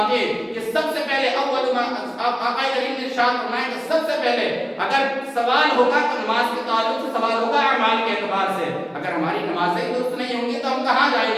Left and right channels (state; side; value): identical; both; correlation 1.00